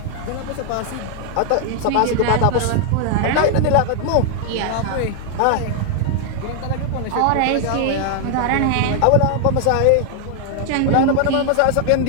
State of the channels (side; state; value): both; different; correlation 0.00